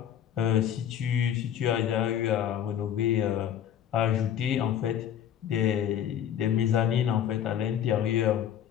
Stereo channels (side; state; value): right; quieter; 9.9 dB